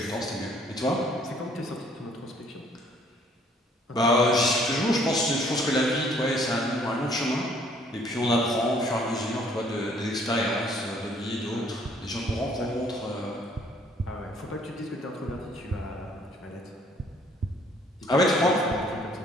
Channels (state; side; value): normal; both; correlation 0.61